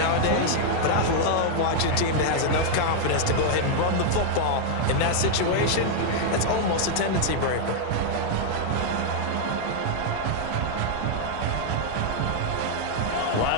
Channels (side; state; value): both; different; correlation 0.00